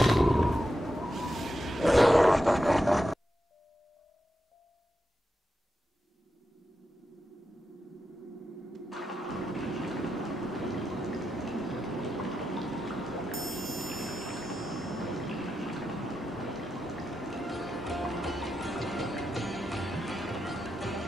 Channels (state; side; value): normal; both; correlation 0.88